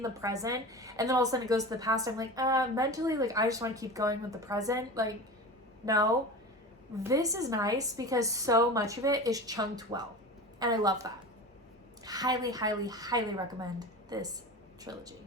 the present and then all of a sudden it goes to the past, I'm like, mentally, like I just want to keep going with the present. Like, no. This is nice because so much of it is chunked well. And I love that. Highly, highly, highly recommend this trilogy.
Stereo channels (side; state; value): both; normal; correlation 0.31